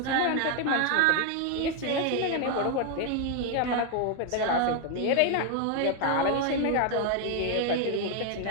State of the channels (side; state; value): both; different; correlation 0.01